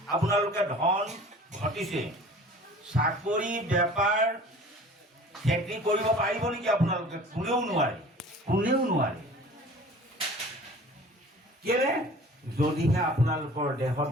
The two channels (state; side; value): normal; both; correlation 0.45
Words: আপোনালোকে ধন ঘটিছে। চাকৰি বেপাৰ খেতি কৰিব পাৰিব নেকি আপোনালোকে? কোনেও নোৱাৰে, কোনেও নোৱাৰে। কেলে? যদিহে আপোনালোকৰ দেহত